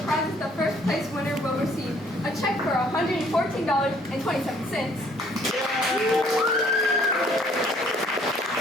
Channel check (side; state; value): both; normal; correlation 0.61